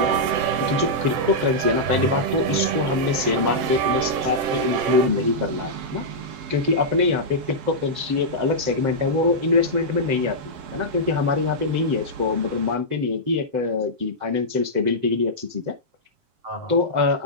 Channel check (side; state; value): left; late; 7.6 ms